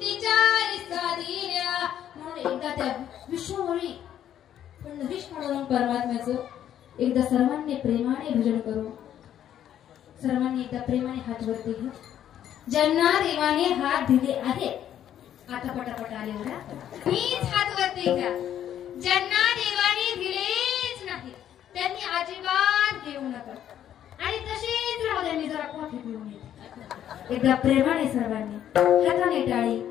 साधीऱ्या. म्हणून एकदा त्या विष्णूमुळी पण विष्णू परमात्म्याचं एकदा सर्वांनी प्रेमाने भजन करू. सर्वांनी एकदा प्रेमाने हात वरती घ्या. ज्यांना देवाने हात दिले आहेत आता पटापट आले बघा, मीच हात वरती घ्या. ज्यांना देवाने दिलेच नाही त्यांनी अजिबात घेऊ नका आणि तसेच राहू द्या. मी जरा कॉफी पिऊन येते. एकदा प्रेमाने सर्वांनी हाताने टाळी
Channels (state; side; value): quieter; right; 10.6 dB